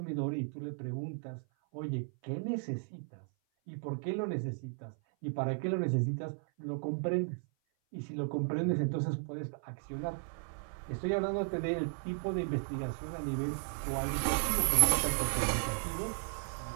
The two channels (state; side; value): silent; left; 54 dB below the other